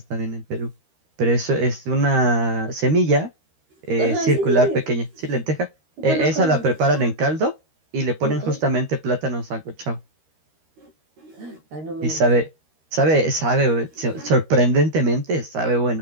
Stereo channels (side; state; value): left; late; 13 ms